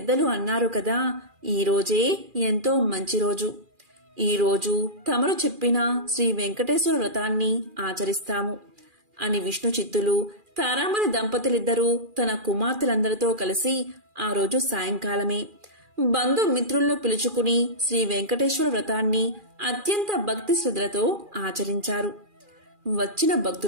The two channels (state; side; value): late; left; 2.4 ms